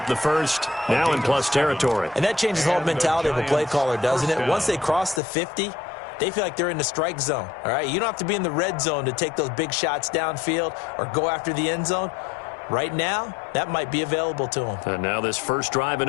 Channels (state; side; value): drops out; right; at 5.2 s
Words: the first, now in plus territory. And that changes the whole mentality of a play caller, doesn't it? Once they cross the 50, they feel like they're in the strike zone, all right? You don't have to be in the red zone to take those big shots downfield or go after the end zone. Right now, that might be available to them. And now this first drive in